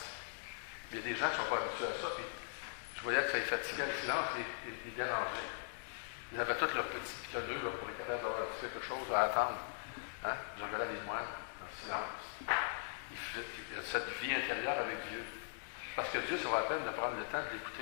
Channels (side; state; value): right; silent; digital silence